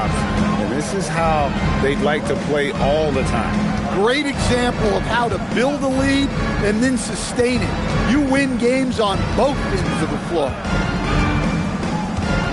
And this is how they'd like to play all the time. Great example of how to build a lead and then sustain it. You win games on both ends of the floor.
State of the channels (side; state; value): both; identical; correlation 1.00